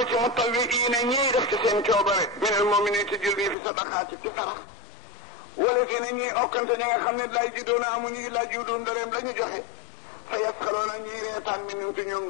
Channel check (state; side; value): drops out; right; at 3.6 s